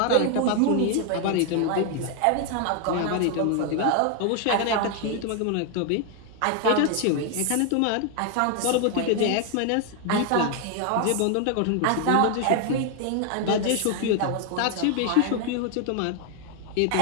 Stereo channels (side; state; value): both; different; correlation 0.00